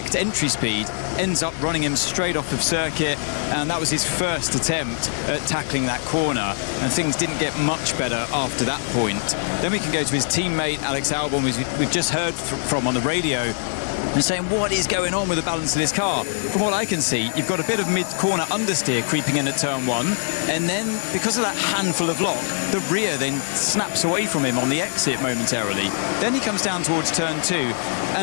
entry speed ends up running him straight off of circuit, and that was his first attempt at tackling that corner, and things didn't get much better after that point. Then we can go to his teammate Alex Albon, who we've just heard from on the radio, and saying what is going on with the balance of this car. From what I can see, you've got a bit of mid-corner understeer creeping in at turn 1, and then because of that handful of lock, the rear then snaps away from him on the exit momentarily. Then he comes down towards turn 2,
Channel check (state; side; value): silent; right; digital silence